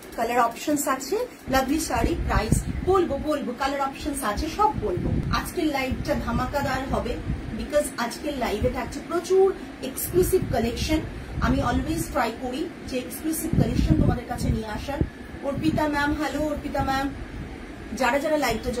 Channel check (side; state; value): both; identical; correlation 1.00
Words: কালার অপশনস আছে, লাভলি শাড়ি, প্রাইস বলবো কালার অপশনস আছে, সব বলবো। আজকের লাইভটা ধামাকাদার হবে বিকজ আজকের লাইভে থাকছে প্রচুর এক্সক্লুসিভ কালেকশন। আমি অলওয়েজ ট্রাই করি যে এক্সক্লুসিভ কালেকশন তোমাদের কাছে নিয়ে আসার। Arpita ma'am, hello Arpita ma'am. যারা যারা লাইভটা